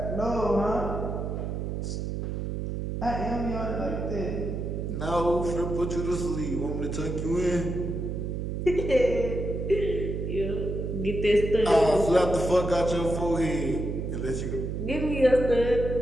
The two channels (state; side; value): noise; right; hum, 3 dB below the sound